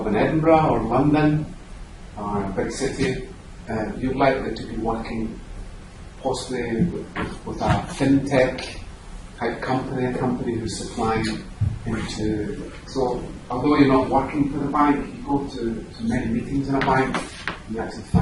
in Edinburgh or London or a big city, you're likely to be working possibly with a fintech type company, a company who's supplying into. So although you're not working for the bank, you go to many meetings in a bank, you actually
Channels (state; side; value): identical; both; correlation 1.00